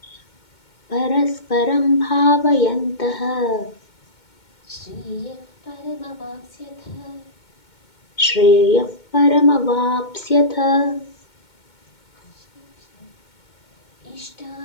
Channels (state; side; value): late; right; 2.2 ms